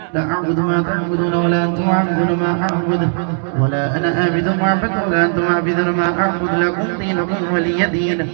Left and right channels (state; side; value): silent; left; digital silence